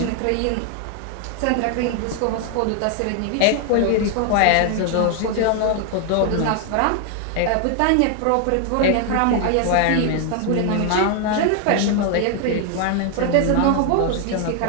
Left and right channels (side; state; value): both; different; correlation 0.00